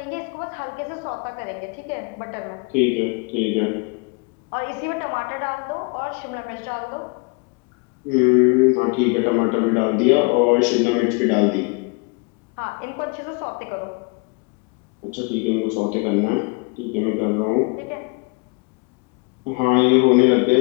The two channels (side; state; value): right; quieter; 31.1 dB